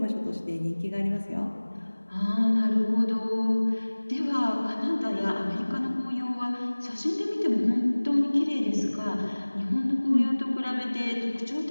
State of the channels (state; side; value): inverted; both; correlation -1.00